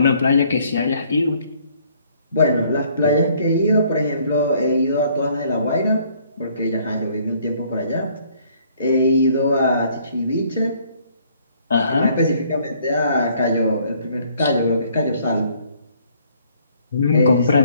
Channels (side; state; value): both; inverted; correlation -0.63